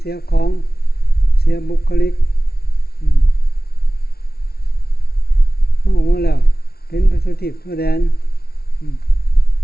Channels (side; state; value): right; late; 0.45 ms